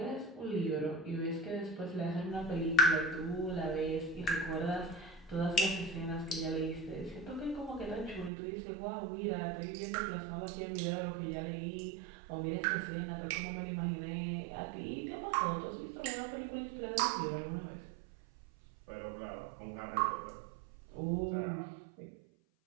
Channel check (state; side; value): drops out; left; at 8.3 s